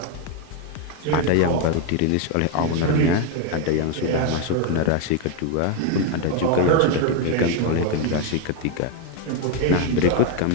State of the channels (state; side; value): different; both; correlation 0.01